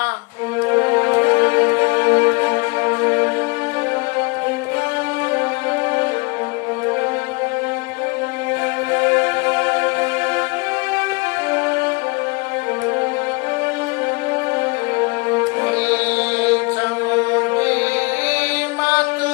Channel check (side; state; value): right; quieter; 28.3 dB